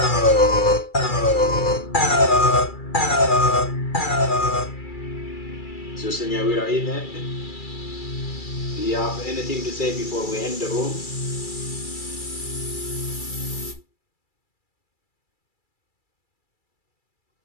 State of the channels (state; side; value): late; right; 2.3 ms